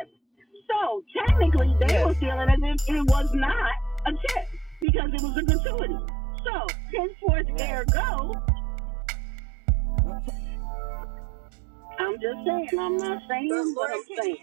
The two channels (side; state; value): left; drops out; at 4.9 s